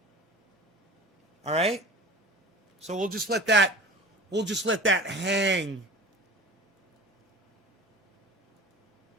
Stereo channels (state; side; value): normal; both; correlation 0.39